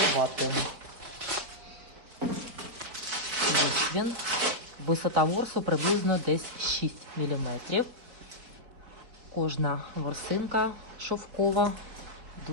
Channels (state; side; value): late; left; 4.4 ms